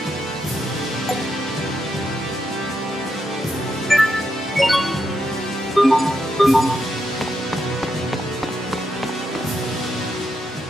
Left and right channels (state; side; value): normal; both; correlation 0.82